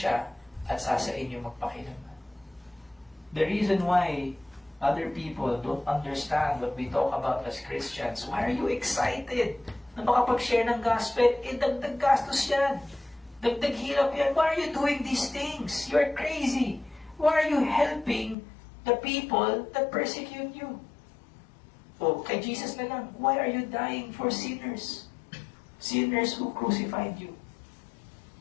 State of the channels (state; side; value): drops out; right; at 18.4 s